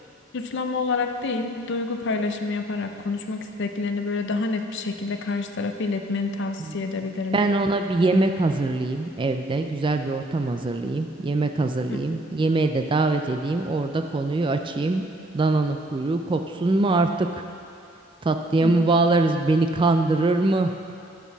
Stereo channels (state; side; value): normal; both; correlation 0.62